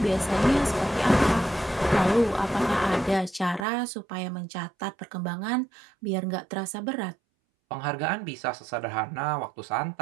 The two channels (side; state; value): left; drops out; at 3.7 s